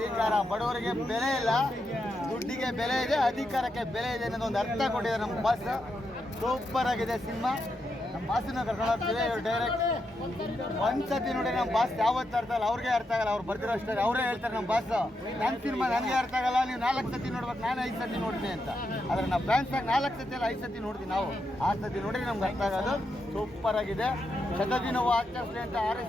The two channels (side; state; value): both; normal; correlation 0.84